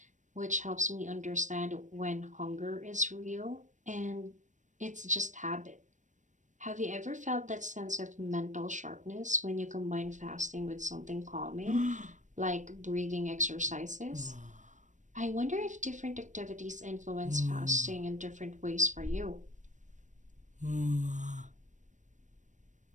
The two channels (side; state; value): left; late; 0.36 ms